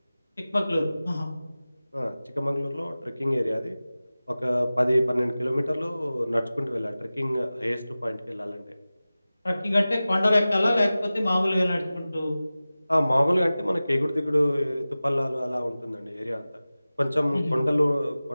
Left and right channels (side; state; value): both; inverted; correlation -0.97